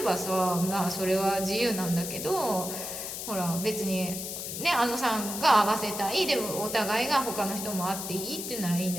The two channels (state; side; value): noise; left; hiss, 6 dB below the sound